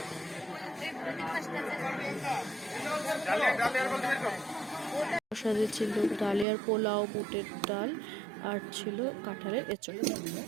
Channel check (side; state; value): left; drops out; at 6.5 s